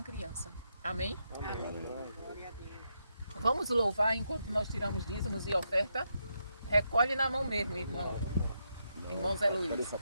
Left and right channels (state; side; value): inverted; both; correlation -0.82